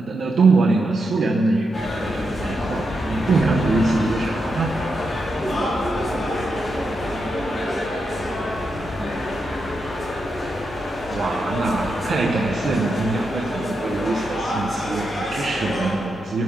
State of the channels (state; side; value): normal; both; correlation 0.85